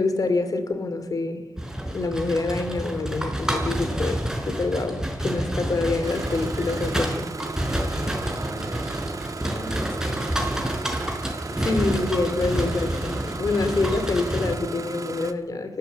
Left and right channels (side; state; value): both; normal; correlation 0.83